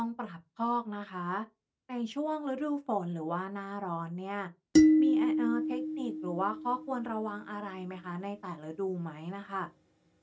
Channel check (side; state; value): both; identical; correlation 1.00